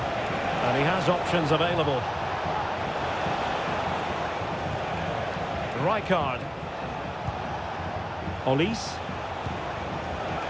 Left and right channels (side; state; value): both; identical; correlation 1.00